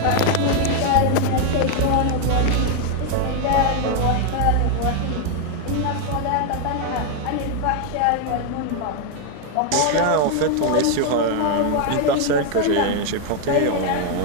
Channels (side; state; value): both; different; correlation 0.00